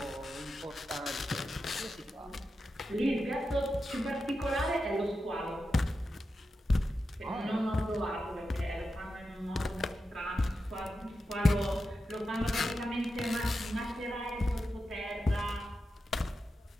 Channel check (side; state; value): both; normal; correlation 0.90